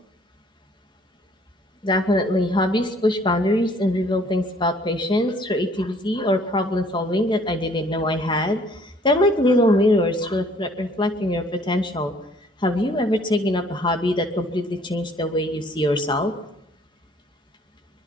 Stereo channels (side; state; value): both; normal; correlation 0.59